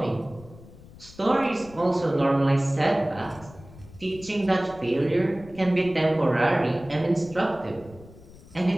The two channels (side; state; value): left; noise; rumble, 20 dB below the sound